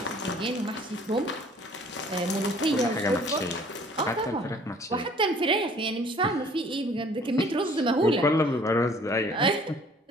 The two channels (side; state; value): both; normal; correlation 0.54